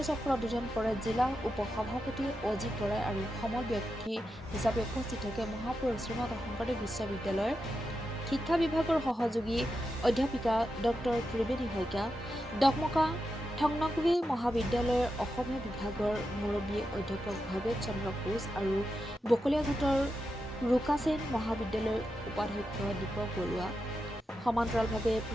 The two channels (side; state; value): both; normal; correlation 0.88